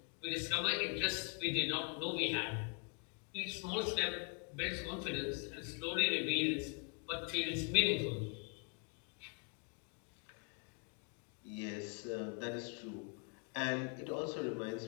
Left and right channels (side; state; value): right; quieter; 38.0 dB